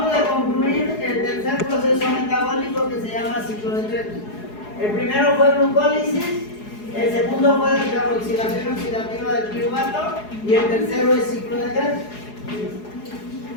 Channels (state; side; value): late; right; 4.8 ms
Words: de concluir el tercer proceso metabólico que se llama ciclo de Krebs. El primero fue glucólisis, el segundo fue descarboxilación oxidativa del piruvato y el tercero es ciclo de Krebs.